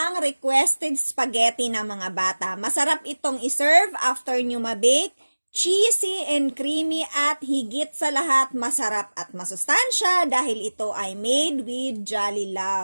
requested spaghetti ng mga bata. Masarap itong iserve after nyo mabake, cheesy and creamy at higit sa lahat masarap at masustansya dahil ito ay made with Jolly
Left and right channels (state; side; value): inverted; both; correlation -1.00